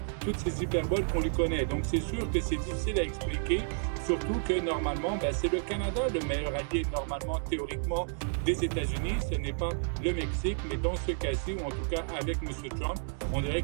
ces hyperboles qu'on lui connaît. Donc, c'est sûr que c'est difficile à expliquer, surtout que normalement, c'est le Canada le meilleur allié, normalement, théoriquement, des États-Unis. Ce n'est pas le Mexique, mais dans ce cas-ci, ou en tout cas avec M. Trump, on dirait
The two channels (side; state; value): left; silent; digital silence